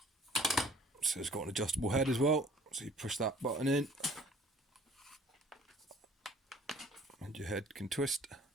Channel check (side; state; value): both; normal; correlation 0.52